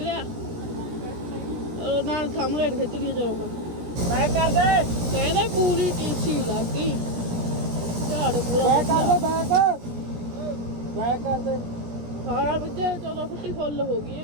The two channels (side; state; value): left; late; 17 ms